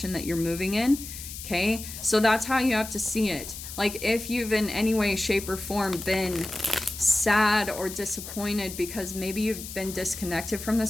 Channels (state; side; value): noise; left; hiss, 10 dB below the sound